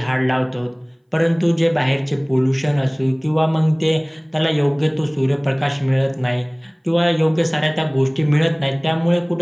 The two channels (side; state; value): both; identical; correlation 1.00